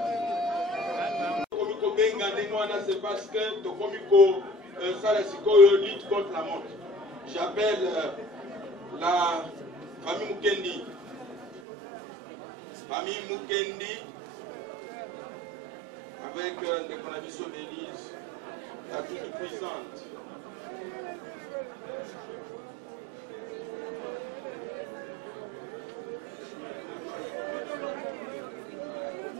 c'est parce que Tokomiko Salasikoyo lutte contre la mort. J'appelle la famille Mukendi. Famille Mukendi, avec les conditions d'Élise, la toute puissante.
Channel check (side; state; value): left; drops out; at 11.6 s